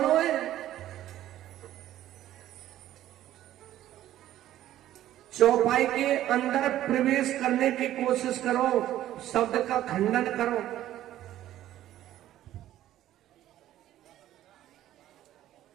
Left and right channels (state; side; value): quieter; left; 13.1 dB